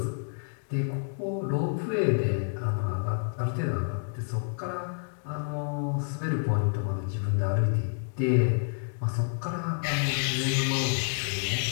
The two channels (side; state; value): right; silent; digital silence